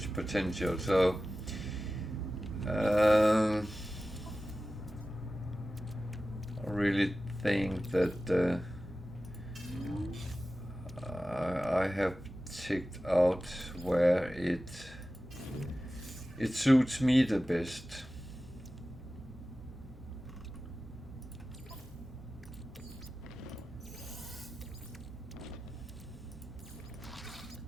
potential, so I really think that I have checked out where it suits me the best.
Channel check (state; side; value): normal; both; correlation 0.95